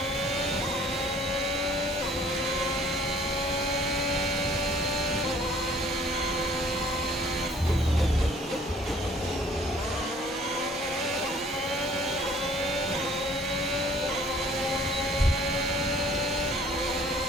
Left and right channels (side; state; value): both; normal; correlation 0.57